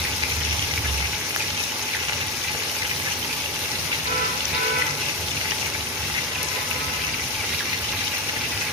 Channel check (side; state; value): both; normal; correlation 0.15